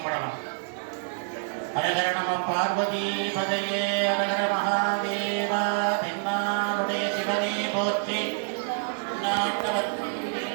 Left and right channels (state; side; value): silent; left; digital silence